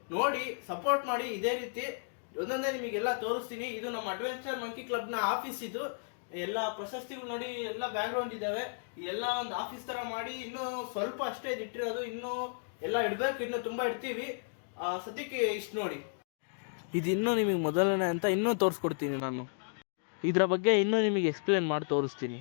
ನೋಡಿ ಸಪೋರ್ಟ್ ಮಾಡಿ. ಇದೇ ರೀತಿ ಒಂದೊಂದೇ ನಿಮಗೆಲ್ಲ ತೋರಿಸ್ತೀನಿ. ಇದು ನಮ್ಮ ಅಡ್ವೆಂಚರ್ ಮಂಕಿ ಕ್ಲಬ್ನ ಆಫೀಸ್. ಇದು ಎಲ್ಲ ಪ್ರಶಸ್ತಿಗಳು ನೋಡಿ, ಎಲ್ಲ ಬ್ಯಾಕ್ ಗ್ರೌಂಡ್ ಇದಾವೆ. ಇದೆಲ್ಲ ಒಂದು ಆಫೀಸ್ ತರ ಮಾಡಿ ಇನ್ನೂ ಸ್ವಲ್ಪ ಅಷ್ಟೇ ಇಟ್ಟಿರೋದು. ಇನ್ನೂ ಎಲ್ಲ ಇಡಬೇಕು, ಇನ್ನೂ ತುಂಬಾ ಇಡ್ತೀವಿ. ಸದ್ಯಕ್ಕೆ ಇಷ್ಟು ನೋಡಿ. ಇದು ಇನ್ನೂ ನಿಮಗೆ ಮೊದಲನೇ ಅಂತ ಇನ್ನೂ ತೋರಿಸ್ಕೊಡ್ತೀನಿ. ನಾನು ಇದರ ಬಗ್ಗೆ ಇನ್ನೂ ನಿಮಗೆ ಎಕ್ಸ್ಪ್ಲೇನ್ ಮಾಡಿ ತೋರಿಸ್ತೀನಿ.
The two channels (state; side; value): silent; right; digital silence